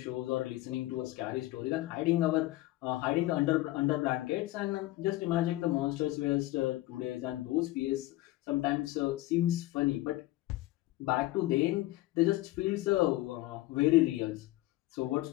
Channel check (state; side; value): quieter; right; 17.4 dB